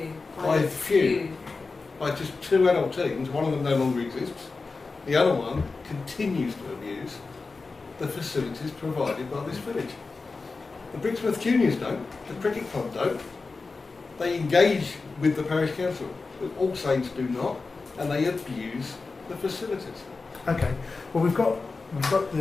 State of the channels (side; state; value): right; quieter; 4.0 dB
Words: By the few. By just 2 adult teams, one of them no longer exists, the other one continues to abuse the facilities provided by this village. The Brixworth Juniors don't, the cricket club don't. They engage with the parish council, but All Saints do not, and they abuse the facilities. Okay. Well, we've got